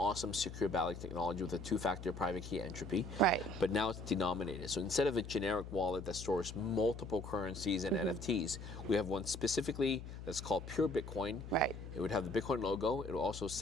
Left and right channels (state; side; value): noise; left; hum, 10 dB below the sound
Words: secure Ballet technology with a two-factor private key entropy. Right. But now it's denominated. So instead of a generic wallet that stores multiple currencies and NFTs, we have one specifically that's called pure Bitcoin. Right. It would have the Bitcoin logo. It will also